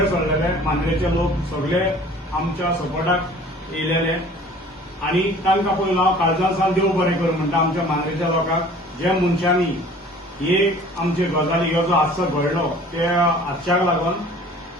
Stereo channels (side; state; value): both; normal; correlation 0.48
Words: सरलेले, मांद्रेचे लोक सगळे आमच्या सपोर्टाक येयलेले आनी तांकां पयलो हांव काळजांसान देव बरें करूं म्हणटा आमच्या मांद्रेच्या लोकांक, ज्या मनशांनी हे आमचे गजाली हो जो हादसो घडलो त्या हादशाक लागून